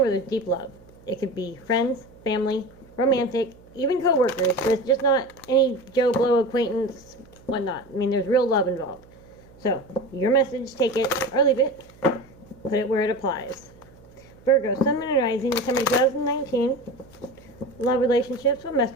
there's deep love. It could be friends, family, romantic, even co-workers. But it's just not any Joe Blow acquaintance, whatnot. I mean, there's real love involved. So, your message, take it or leave it. Put it where it applies. Virgo, Sun, Moon, and Rising, December 2019, love relationships. What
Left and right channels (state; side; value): noise; right; hum, 26 dB below the sound